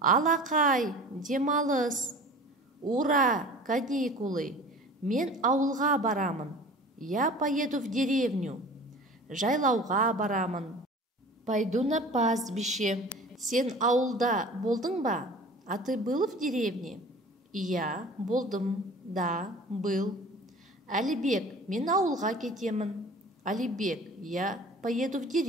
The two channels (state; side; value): normal; both; correlation 0.42